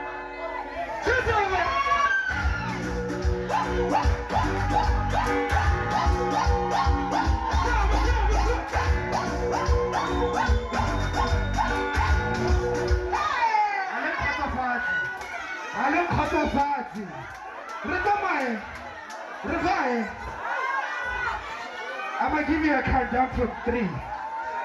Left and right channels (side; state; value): both; identical; correlation 1.00